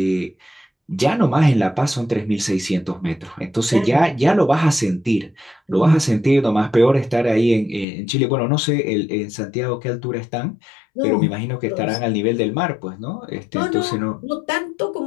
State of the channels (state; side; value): drops out; right; at 7.9 s